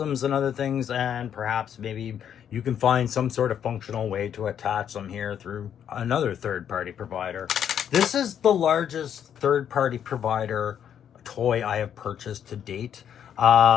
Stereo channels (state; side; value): quieter; right; 9.1 dB